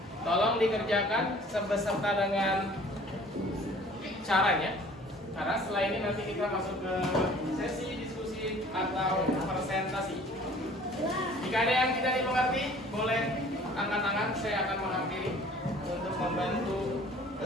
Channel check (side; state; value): both; normal; correlation 0.51